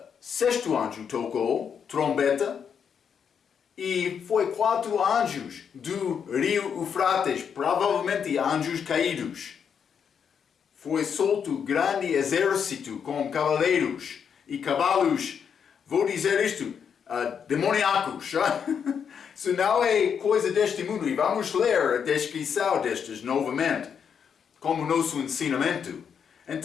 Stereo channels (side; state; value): right; quieter; 7.3 dB